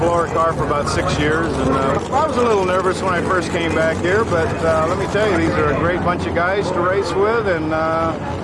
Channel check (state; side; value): identical; both; correlation 1.00